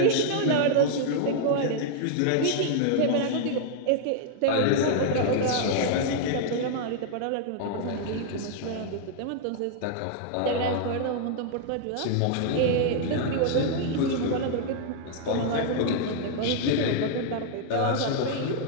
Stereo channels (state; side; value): different; both; correlation -0.01